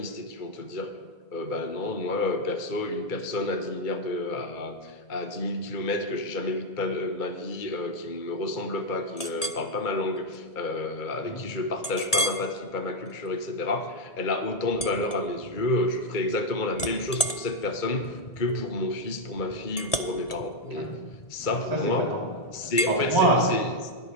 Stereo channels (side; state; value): right; late; 1.7 ms